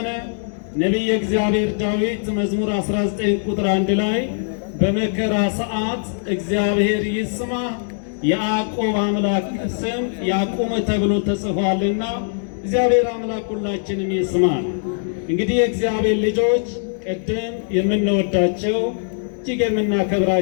ነቢየ እግዚአብሔር ዳዊት መዝሙር 19 ቁጥር 1 ላይ በመከራ ሰዓት እግዚአብሔር ይስማ የያዕቆብ አምላክ ስም ያቁም ተብሎ ተጽፏልና እግዚአብሔር አምላክ ሁላችንም ይስማል። እንግዲህ የእግዚአብሔር ልጆች ቅድም የምንወዳቸው እጅግ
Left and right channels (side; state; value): right; silent; digital silence